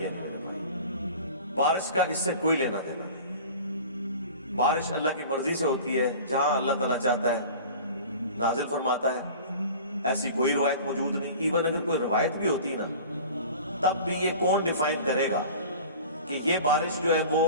نہیں میرے بھائی. بارش کا اس سے کوئی لینا دینا نہیں. بارش اللہ کی مرضی سے ہوتی ہے, جہاں اللہ تعالیٰ چاہتا ہے نازل فرماتا ہے. ایسی کوئی روایت موجود نہیں. ایون اگر کوئی روایت بھی ہوتی نا تب بھی یہ کون ڈیفائن کرے گا کہ یہ بارش جو ہے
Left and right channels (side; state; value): both; inverted; correlation -0.40